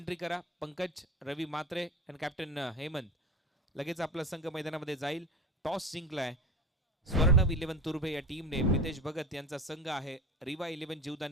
करा. पंकज, रवी मात्रे आणि कॅप्टन हेमंत लगेच आपला संघ मैदानामध्ये जाईल. टॉस जिंकलाय स्वर्णव 11 तुर्भे या टीमने. मितेश भगत यांचा संघ आहे. रिवा 11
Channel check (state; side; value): normal; both; correlation 0.30